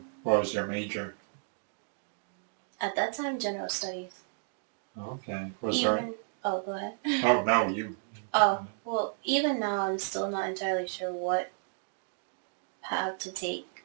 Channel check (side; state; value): left; silent; digital silence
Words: what was your major? At that time, general studies. Okay. Was there? Oh, go ahead. Oh no, you. Oh, well, even now I'm still not entirely sure what path to take